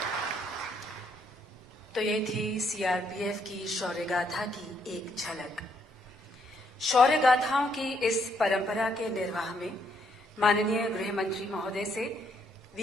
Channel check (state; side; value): normal; both; correlation 0.72